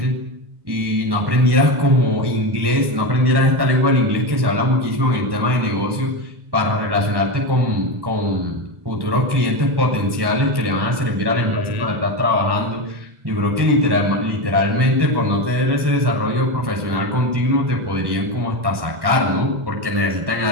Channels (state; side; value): late; left; 1.1 ms